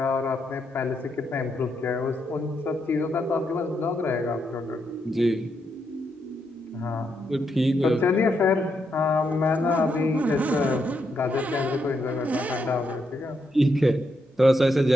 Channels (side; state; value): both; normal; correlation 0.80